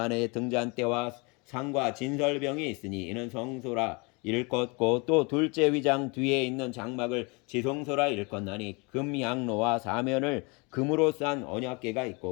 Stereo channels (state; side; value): quieter; right; 29.5 dB